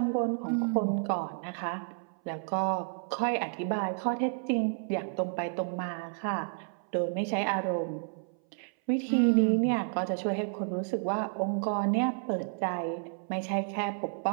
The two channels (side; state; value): left; silent; 57 dB below the other